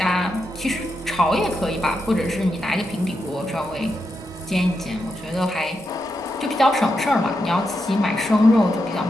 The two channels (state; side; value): normal; both; correlation 0.85